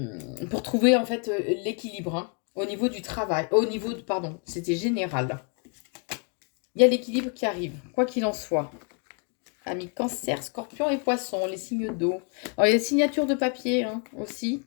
pour trouver en fait l'équilibre hein, au niveau du travail. Au niveau de, pardon, c'était général. Il y a l'équilibre qui arrive, quoi qu'il en soit. Amis Cancer, Scorpion et Poisson, les signes d'eau. Alors, il y a des signatures de papier hein, aussi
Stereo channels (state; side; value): quieter; right; 37.8 dB